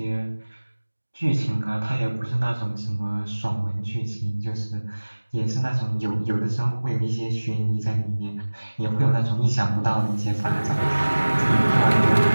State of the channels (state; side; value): inverted; both; correlation -1.00